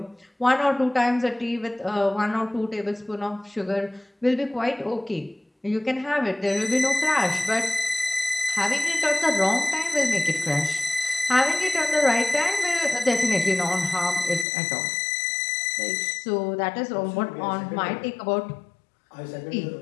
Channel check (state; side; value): drops out; right; at 14.5 s